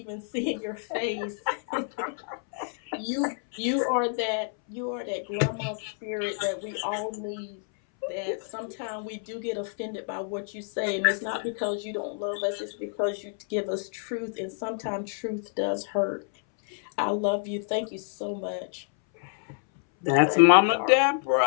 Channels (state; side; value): silent; right; 59 dB below the other